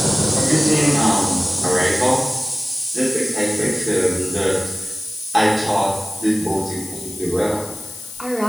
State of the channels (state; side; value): noise; left; hiss, 14 dB below the sound